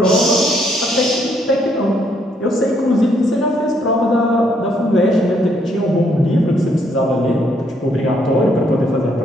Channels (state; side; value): normal; both; correlation 0.71